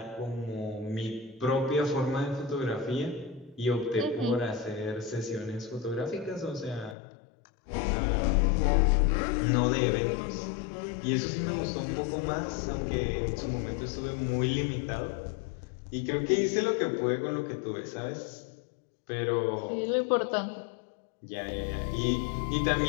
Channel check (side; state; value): right; drops out; at 7.0 s